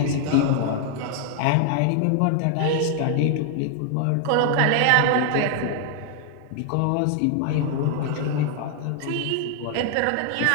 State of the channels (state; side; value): different; both; correlation 0.00